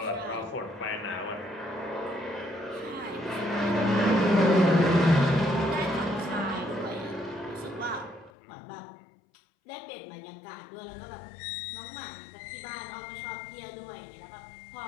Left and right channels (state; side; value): drops out; right; at 8.3 s